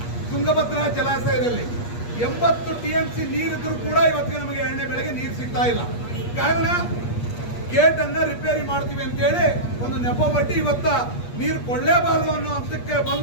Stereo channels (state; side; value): late; right; 8.4 ms